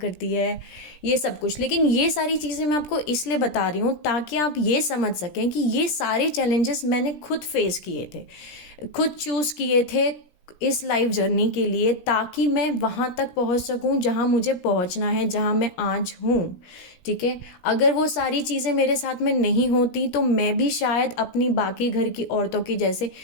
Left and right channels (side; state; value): right; late; 17 ms